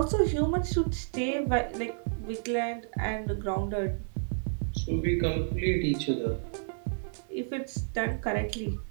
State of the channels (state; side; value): silent; left; digital silence